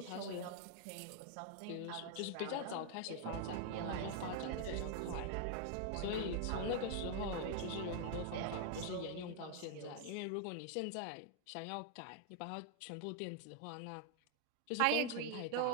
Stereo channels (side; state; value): both; different; correlation 0.00